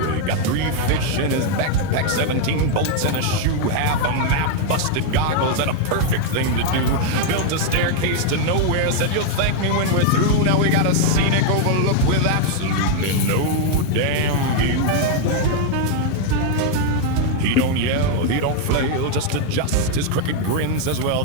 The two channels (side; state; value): both; different; correlation 0.00